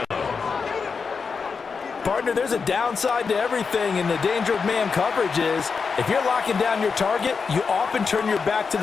there's a downside to everything, and the danger of man coverage is if you're locking down your target, you often turn your back to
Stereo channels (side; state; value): right; quieter; 5.3 dB